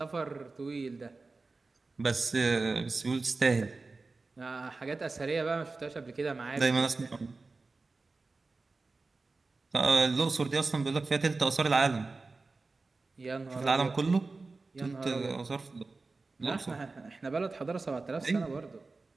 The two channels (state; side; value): quieter; left; 3.7 dB